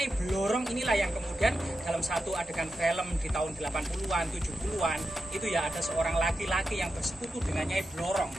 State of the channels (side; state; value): both; normal; correlation 0.89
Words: Blorong inilah yang kemudian dalam satu adegan film di tahun 80-an, 70-an itu ya ada seorang laki-laki yang bersekutu dengan Nyai Blorong,